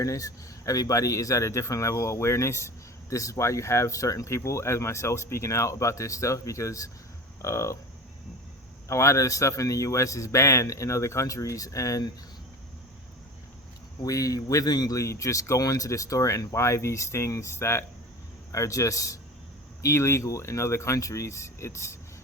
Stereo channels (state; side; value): normal; both; correlation 0.33